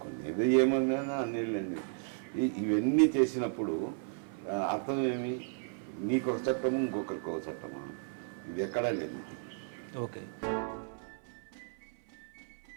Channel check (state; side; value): silent; left; 55 dB below the other